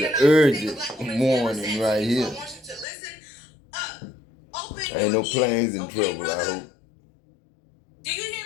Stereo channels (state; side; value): drops out; right; at 2.9 s